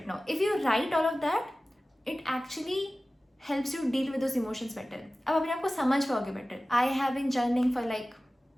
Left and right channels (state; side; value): normal; both; correlation 0.96